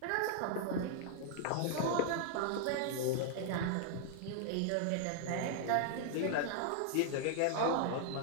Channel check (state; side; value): different; both; correlation 0.00